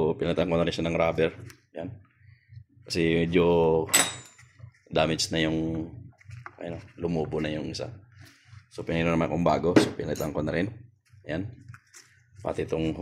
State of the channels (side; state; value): both; identical; correlation 1.00